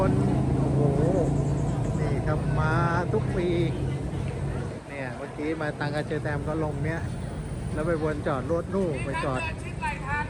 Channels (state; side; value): identical; both; correlation 1.00